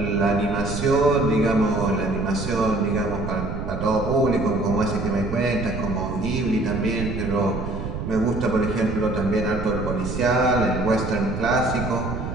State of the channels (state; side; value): noise; right; rumble, 6 dB below the sound